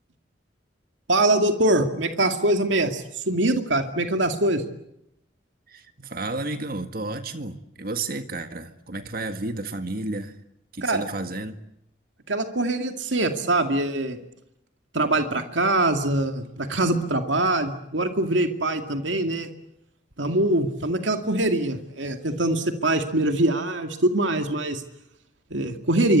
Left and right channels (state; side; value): normal; both; correlation 0.08